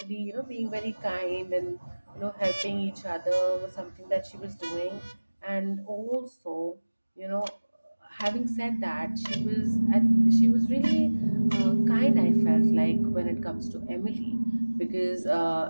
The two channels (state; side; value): inverted; both; correlation -1.00